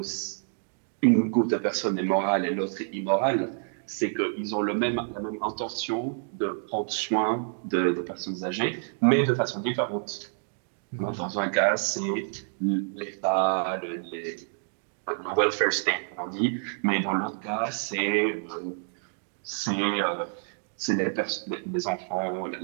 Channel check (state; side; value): silent; left; digital silence